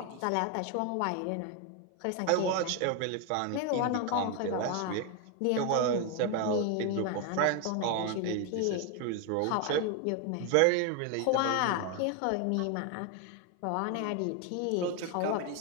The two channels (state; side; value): different; both; correlation 0.01